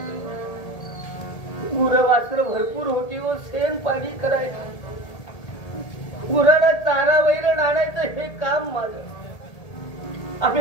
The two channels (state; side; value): late; right; 1.8 ms